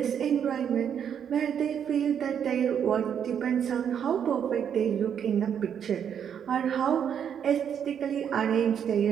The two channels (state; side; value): quieter; left; 8.4 dB